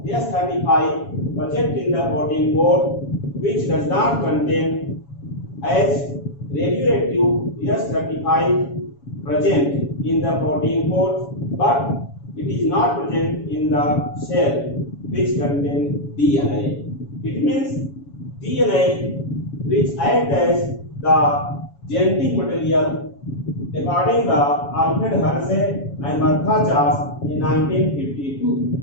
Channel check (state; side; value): late; right; 7.2 ms